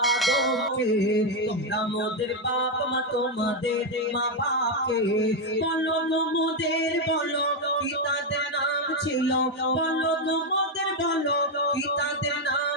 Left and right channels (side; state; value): both; normal; correlation 0.05